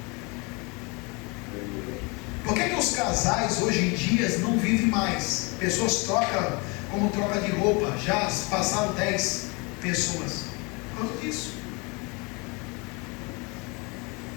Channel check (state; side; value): quieter; right; 29.5 dB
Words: Por que os casais hoje em dia não vivem mais? Pessoas trocam como troca de roupa. Já passaram 10 pessoas. Por causa disso.